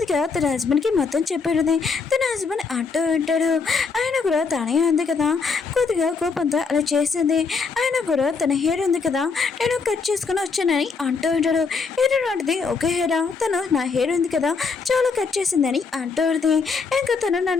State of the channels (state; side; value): quieter; right; 4.9 dB